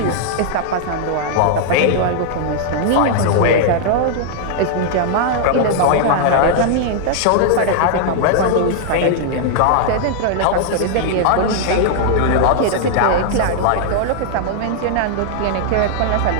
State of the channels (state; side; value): different; both; correlation -0.01